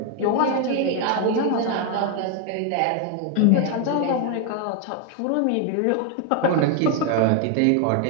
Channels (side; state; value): both; different; correlation 0.01